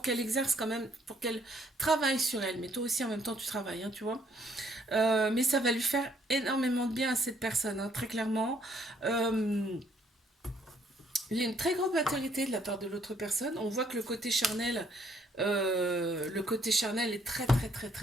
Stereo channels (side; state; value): both; normal; correlation 0.66